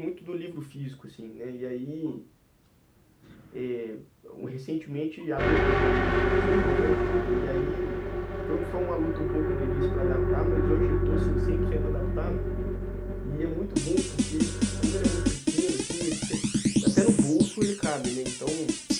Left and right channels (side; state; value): both; identical; correlation 1.00